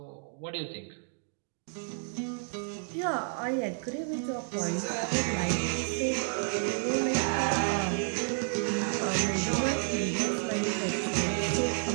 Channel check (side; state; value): left; silent; 57 dB below the other